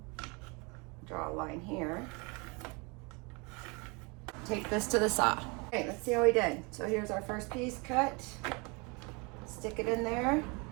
Draw a line here. Take this to the saw. Okay, let's see how we did. So here's our first piece cut. Stick it in there.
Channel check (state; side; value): quieter; left; 29.8 dB